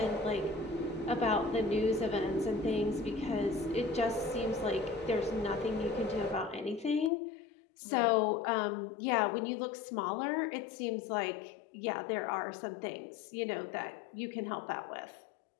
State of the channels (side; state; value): right; drops out; at 7.1 s